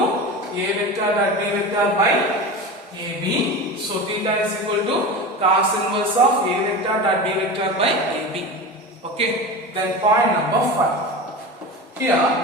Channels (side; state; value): both; normal; correlation 0.28